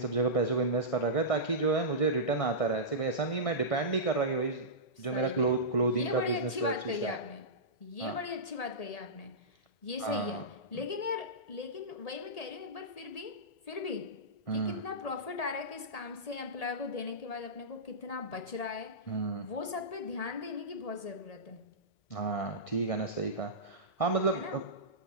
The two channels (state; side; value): late; right; 1.8 ms